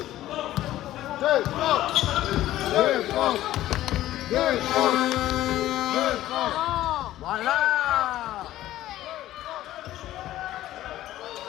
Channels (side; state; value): right; quieter; 14.3 dB